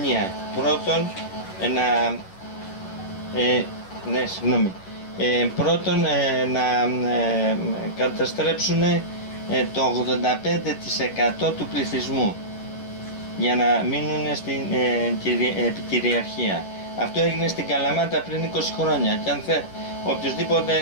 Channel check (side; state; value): right; late; 11 ms